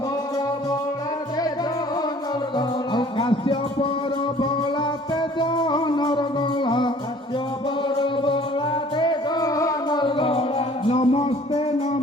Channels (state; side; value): normal; both; correlation 0.53